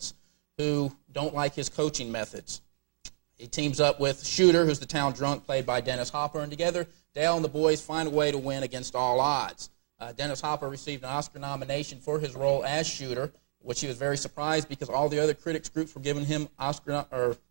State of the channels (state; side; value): silent; left; 58 dB below the other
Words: who don't like his coaching methods. He teams up with Shooter, who's the town drunk, played by Dennis Hopper, and together, Dale and the boys find a way to win against all odds. Dennis Hopper received an Oscar nomination for his role as Shooter, which he was very surprised because all the other critics groups were giving him Oscar